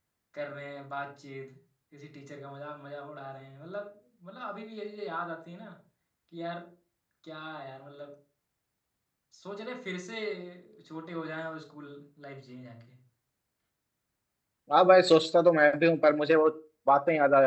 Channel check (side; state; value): both; identical; correlation 1.00